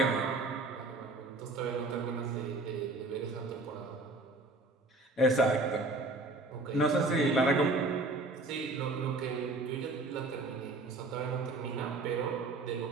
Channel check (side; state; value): left; quieter; 3.2 dB